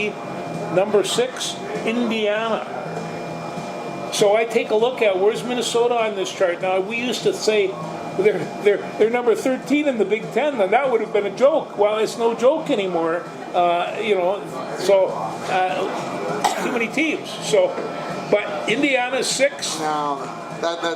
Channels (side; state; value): both; identical; correlation 1.00